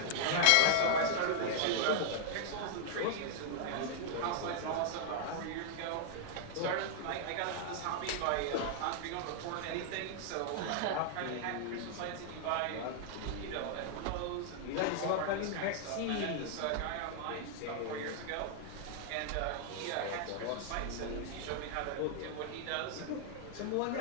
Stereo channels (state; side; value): different; both; correlation -0.01